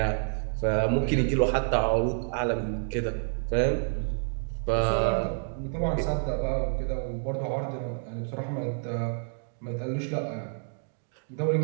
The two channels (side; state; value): left; silent; digital silence